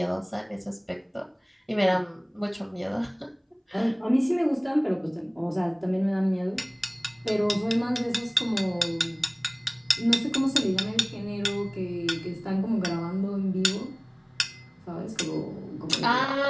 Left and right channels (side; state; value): both; identical; correlation 1.00